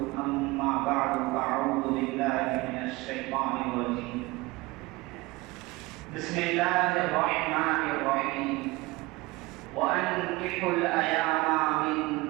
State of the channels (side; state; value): left; quieter; 22.1 dB